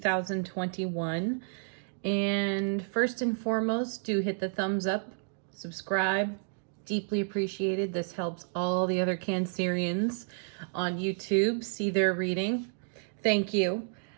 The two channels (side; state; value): left; silent; 57 dB below the other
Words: And first and foremost, do hit the thumbs up, subscribe. Deeply appreciated. This helps all the other Cancerians on YouTube see their reading. Thank you.